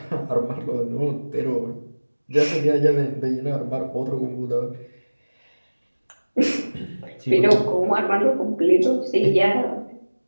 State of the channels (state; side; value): inverted; both; correlation -1.00